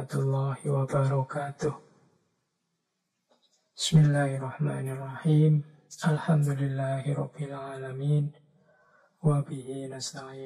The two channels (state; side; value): identical; both; correlation 1.00